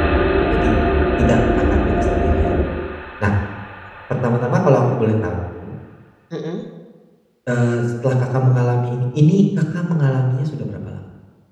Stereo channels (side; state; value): both; identical; correlation 1.00